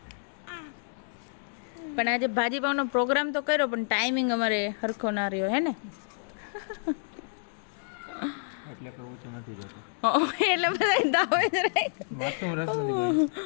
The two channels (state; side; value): silent; right; 59 dB below the other